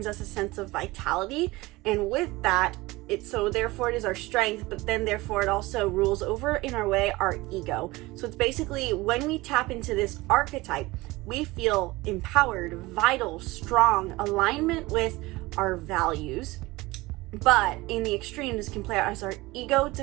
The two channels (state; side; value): quieter; left; 20.8 dB